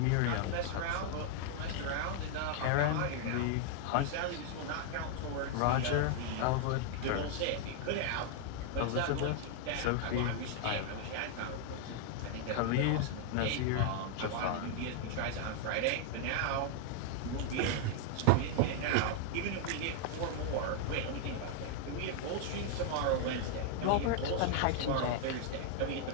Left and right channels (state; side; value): different; both; correlation 0.00